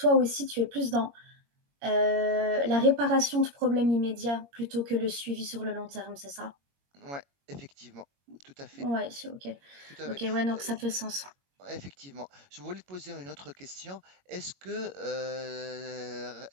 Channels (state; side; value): late; left; 21 ms